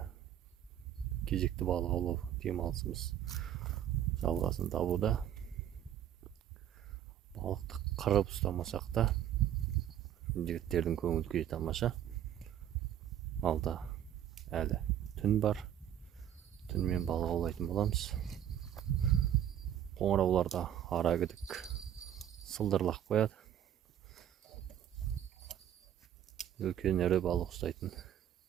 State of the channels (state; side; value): quieter; left; 10.7 dB